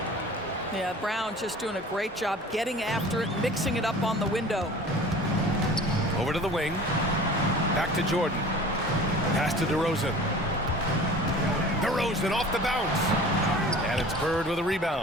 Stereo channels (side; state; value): both; normal; correlation 0.43